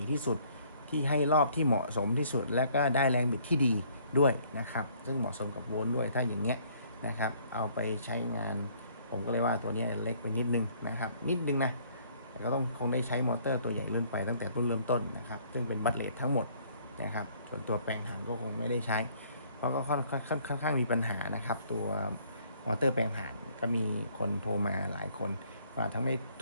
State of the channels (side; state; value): both; inverted; correlation -0.61